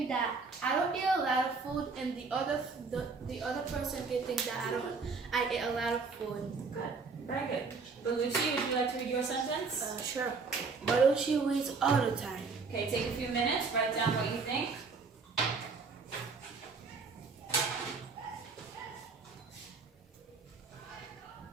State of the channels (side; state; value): left; quieter; 4.6 dB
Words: that I don't eat a lot of food, and the other person can think that I eat a lot of food. Good. Very good. Belushi, would you like to read your sentence? Sure. Belushi reads all the time. Okay, take a few minutes, write down what you think.